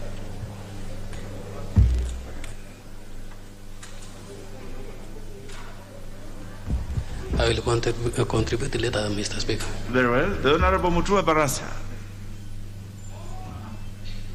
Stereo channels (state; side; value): identical; both; correlation 1.00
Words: I will contribute later, Mr. Speaker. Very well. The Honorable Mutua Barasa.